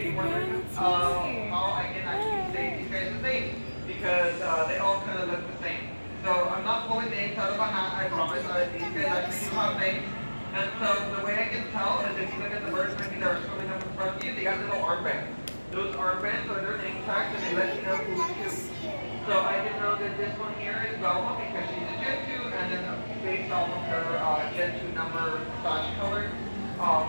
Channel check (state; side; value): inverted; both; correlation -1.00